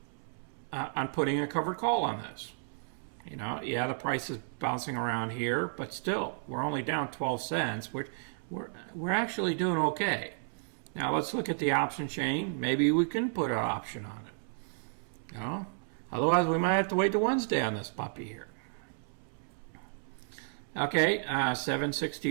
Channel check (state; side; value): silent; left; 56 dB below the other